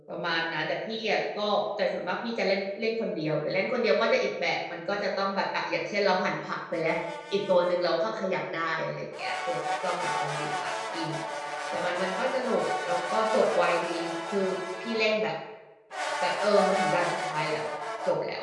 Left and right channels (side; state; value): both; identical; correlation 1.00